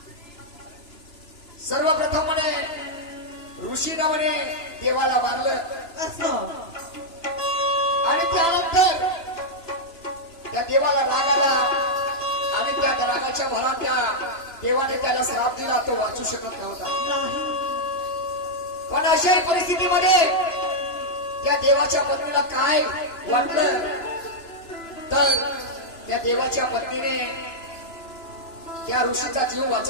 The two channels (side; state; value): right; late; 3.0 ms